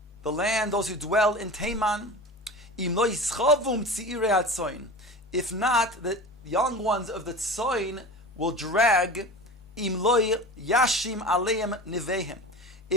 the land, those who dwell in Teman. Im lo yischavum tziirei hatzoin. If not, the young ones of the tzoin will drag. Im lo yashim aleim nivehem.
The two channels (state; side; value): normal; both; correlation 0.33